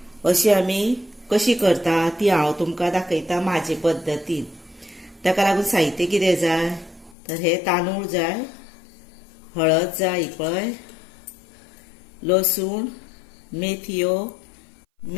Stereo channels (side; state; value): right; drops out; at 7.2 s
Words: अशी आमी कशी करता ती हांव तुमकां दाखयता म्हाजे पद्दतीन। ताका लागून साहित्य कितें जाय तर हे तांदूळ जाय, हळद जाय पळय, लसूण, मेथयो,